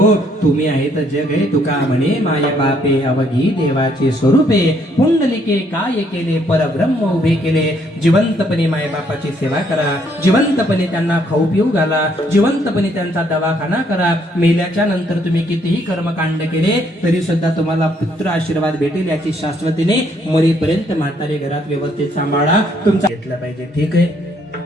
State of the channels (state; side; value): normal; both; correlation 0.69